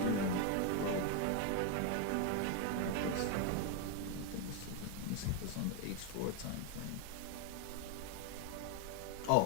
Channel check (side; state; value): both; different; correlation 0.01